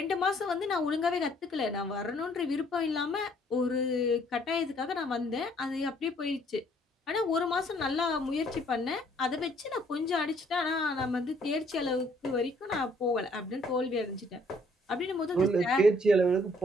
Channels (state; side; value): normal; both; correlation 0.63